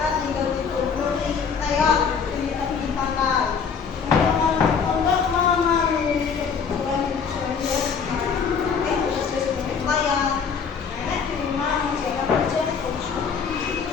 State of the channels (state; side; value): quieter; right; 6.2 dB